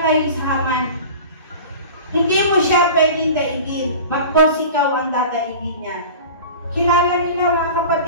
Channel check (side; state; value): both; inverted; correlation -0.37